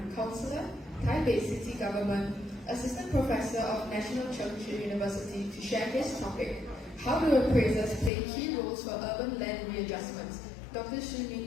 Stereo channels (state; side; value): drops out; right; at 8.1 s